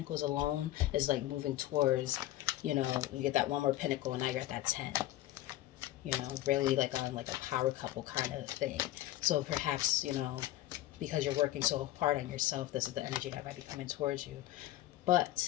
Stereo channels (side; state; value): right; quieter; 14.9 dB